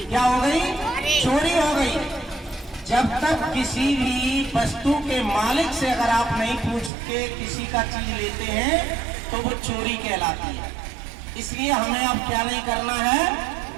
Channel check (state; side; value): drops out; left; at 6.9 s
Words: क्या हो गई? चोरी हो गई। जब तक किसी भी वस्तु के मालिक से अगर आप नहीं पूछ के किसी का चीज लेते हैं तो वो चोरी कहलाती है। इसलिए हमें अब क्या नहीं करना है?